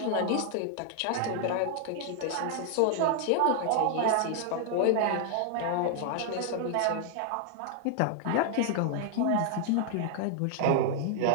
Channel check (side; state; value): both; different; correlation 0.00